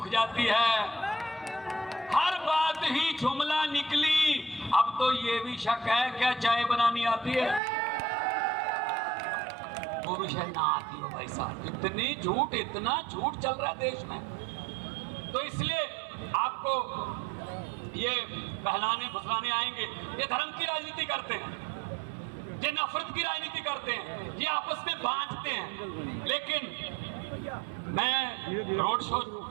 जाती है। हर बात ही जुमला निकली। अब तो ये भी शक है क्या चाय बनानी आती है? वो भी शायद ना आती हो भाई साहब। इतना झूठ चल रहा है देश में। तो इसलिए आपको ये बहलाने फुसलाने आएंगे। ये धर्म की राजनीति करते हैं, ये नफरत की राजनीति करते हैं, ये आपस में बांटते हैं। लेकिन मैं रोड शो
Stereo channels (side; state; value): left; drops out; at 7.6 s